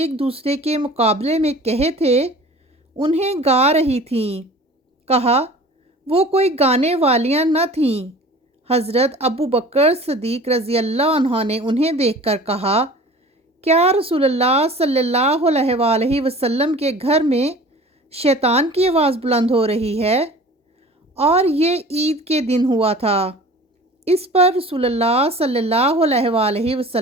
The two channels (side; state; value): both; normal; correlation 0.43